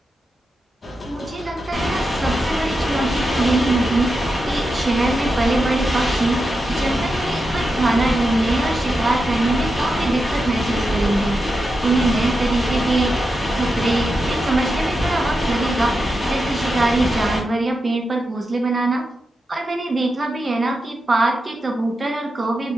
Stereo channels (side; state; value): both; normal; correlation 0.88